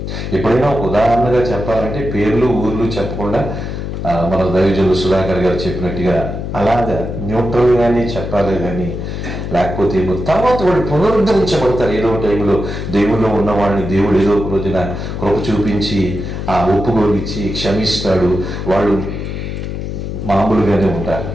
ఎప్పుడైనా ఒక ఉదాహరణగా చెప్పాలంటే పేర్లు ఊర్లు చెప్పకుండా మన దైవజనులు సుధాకర్ గారు చెప్పినట్టుగా అలాగా న్యూట్రల్గానే చెప్పాలి, కానీ లేకపోతే తర్వాత వాళ్ళు పునరుద్ధరించబడతారు. ఏదో టైంలో దేవుల్లో ఉన్న వాళ్ళని దేవుడు ఏదో ఒక రోజున కృప చూపించి ఆ ఒప్పుకోలిచ్చి క్షమిస్తాడు. వాళ్ళు మామూలుగానే ఉంటారు,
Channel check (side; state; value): left; noise; hum, 5 dB below the sound